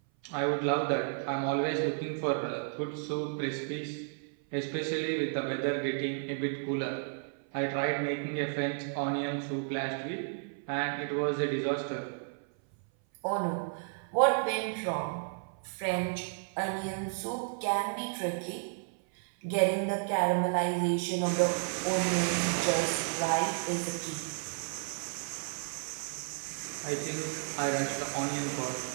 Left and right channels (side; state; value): left; silent; 56 dB below the other